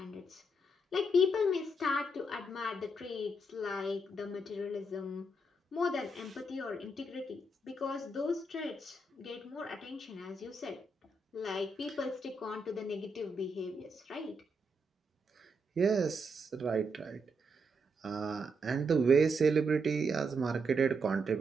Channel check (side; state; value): both; normal; correlation 0.79